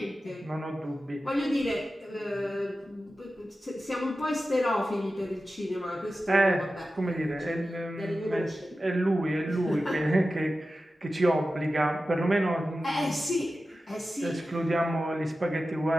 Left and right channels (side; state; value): both; normal; correlation 0.94